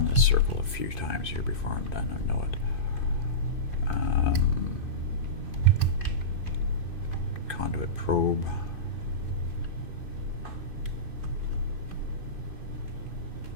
this circle a few times here before I'm done. I know it. Conduit probe.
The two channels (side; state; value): right; late; 2.5 ms